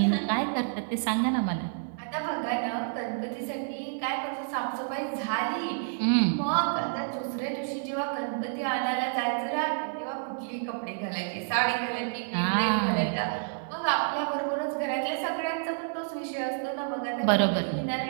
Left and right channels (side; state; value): left; silent; digital silence